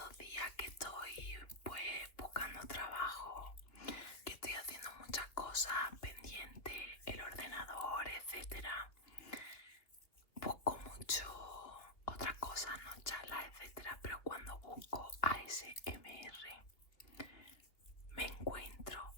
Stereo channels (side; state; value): right; late; 2.6 ms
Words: días que estoy pues buscando trabajo, que estoy haciendo muchas cosas pendientes, el ordenador, etcétera. Busco mucho otras cosas, no charlas, etcétera, pero cuando busco ASMR me encuentro